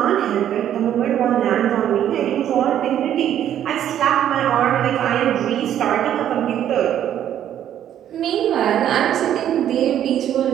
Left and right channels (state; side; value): quieter; left; 10.7 dB